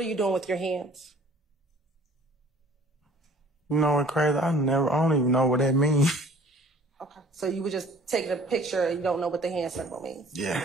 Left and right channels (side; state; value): both; normal; correlation 0.51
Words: you doing with your hands? You know what's crazy? I don't even know what that means. Okay. So you were just taking a picture and you don't know what the hand symbol means? Yeah,